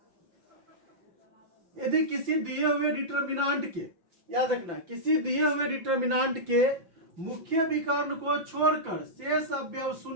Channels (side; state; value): left; late; 5.8 ms